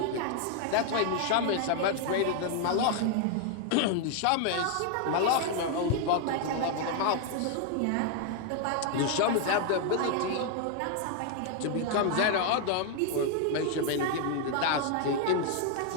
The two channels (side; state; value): both; different; correlation 0.00